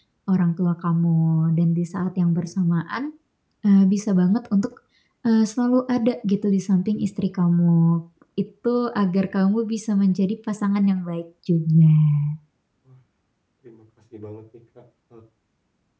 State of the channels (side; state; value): both; identical; correlation 1.00